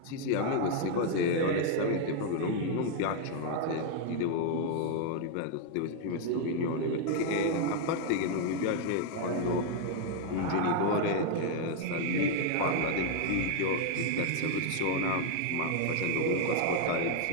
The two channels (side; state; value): both; different; correlation 0.00